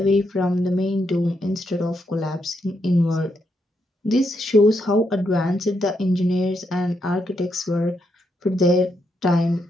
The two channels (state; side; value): normal; both; correlation 0.80